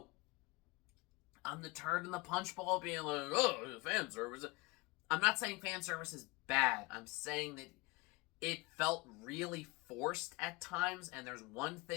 the turd in the punch bowl being like, oh, fan service. I'm not saying fan service is bad. I'm saying that it felt really forced at times, and there's one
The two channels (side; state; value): right; quieter; 24.6 dB